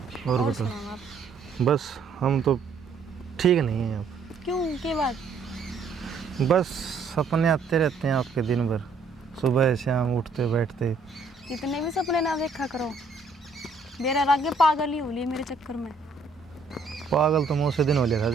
और बता, सुनाओ आप। बस हम तो ठीक नहीं हैं अब। क्यों, क्या बात? बस सपने आते रहते हैं आपके दिन भर, सुबह शाम उठते बैठते। इतने भी सपने ना देखा करो, मेरा आगे पागल ही हो ली मेरे चक्कर में। पागल तो मुझसे दिन हो लिया था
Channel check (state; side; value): quieter; left; 4.1 dB